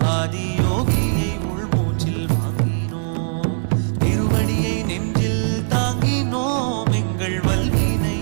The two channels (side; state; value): left; silent; digital silence